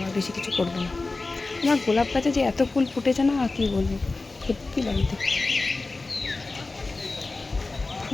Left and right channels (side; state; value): right; quieter; 3.5 dB